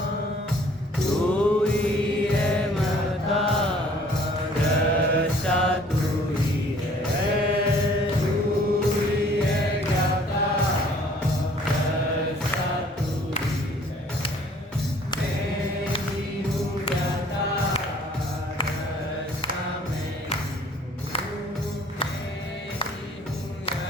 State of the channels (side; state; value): both; normal; correlation 0.56